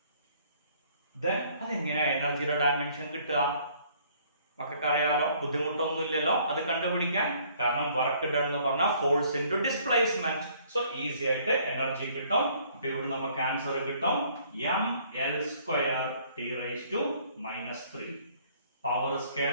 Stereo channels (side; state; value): both; inverted; correlation -0.61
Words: Then അതെങ്ങനെയാ എനർജിയുടെ ഡയമെൻഷൻ കിട്ടുക? മക്കൾക്കറിയാലോ, ബുദ്ധിമുട്ടൊന്നുമില്ലല്ലോ അത് കണ്ടുപിടിക്കാൻ. കാരണം വർക്ക് ഡൺ എന്ന് പറഞ്ഞാൽ force into displacement. So easy ആയിട്ട് എനർജി കിട്ടും. അപ്പൊ ഇവിടെ നമുക്ക് ആൻസർ കിട്ടും ml² T⁻³ പവർ